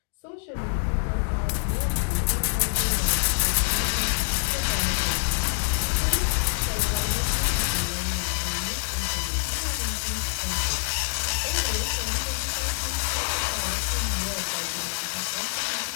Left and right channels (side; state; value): right; silent; digital silence